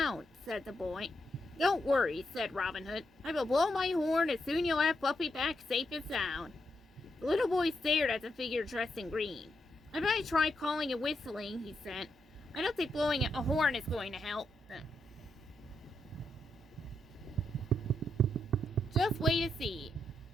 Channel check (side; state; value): both; normal; correlation 0.82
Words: said the boy. Don't worry, said Robin Hood. I will blow my horn and soon you'll have Fluffy back safe and sound. The little boy stared at the figure dressed in green. I better try calling and whistling, he said. I don't think blowing a horn is going to help. Just wait and see,